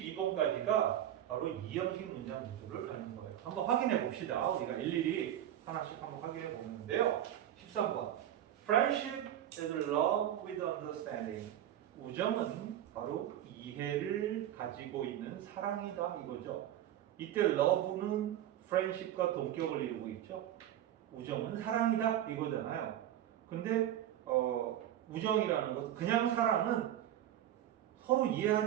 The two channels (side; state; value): left; quieter; 11.6 dB